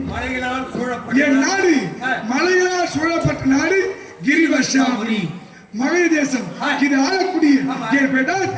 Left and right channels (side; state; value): both; identical; correlation 1.00